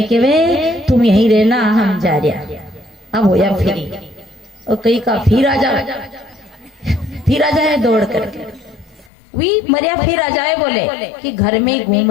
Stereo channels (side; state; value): right; drops out; at 9.1 s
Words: के वे तुम यहीं रहना, हम जा रहे। अब होया फिर, और कहीं का फिर आ जाए दौड़ करके, वी मरिया फिर आ जाए, बोले कि घर में